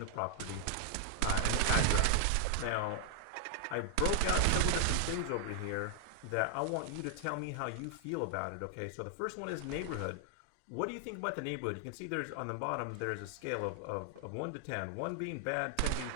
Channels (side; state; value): both; different; correlation 0.00